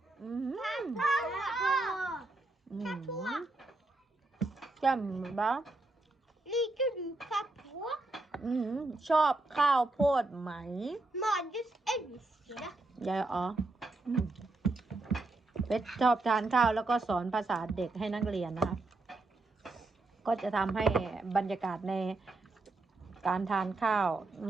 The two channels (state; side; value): quieter; left; 3.1 dB